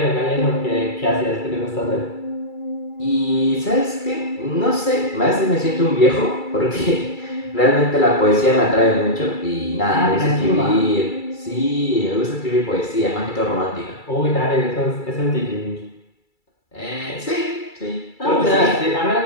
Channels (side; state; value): right; late; 2.3 ms